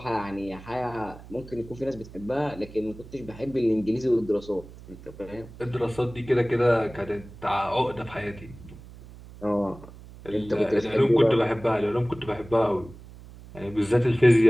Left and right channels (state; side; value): noise; right; hum, 18 dB below the sound